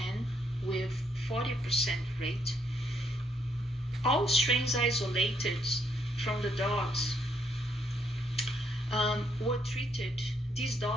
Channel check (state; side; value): normal; both; correlation 0.73